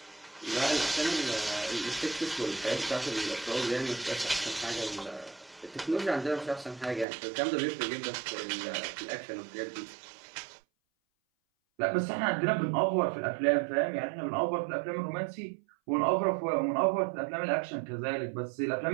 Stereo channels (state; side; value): drops out; left; at 7.1 s